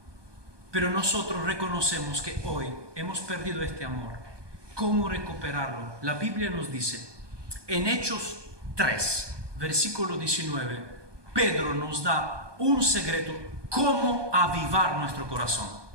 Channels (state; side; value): late; left; 1.2 ms